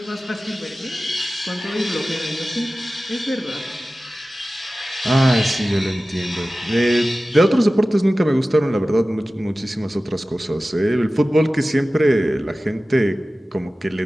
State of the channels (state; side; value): normal; both; correlation 0.96